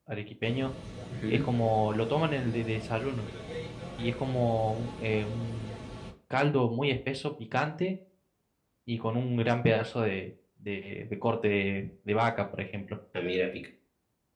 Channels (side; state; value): both; identical; correlation 1.00